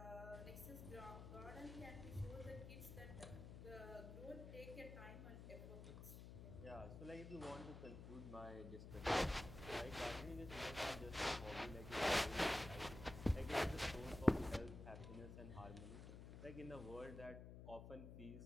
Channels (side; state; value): left; noise; hum, 10 dB below the sound